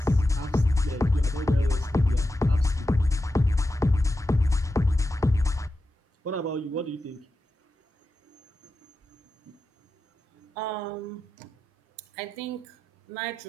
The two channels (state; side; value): normal; both; correlation 0.90